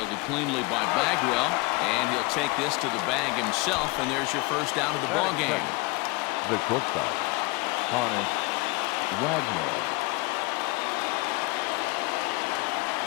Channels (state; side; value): quieter; right; 25.0 dB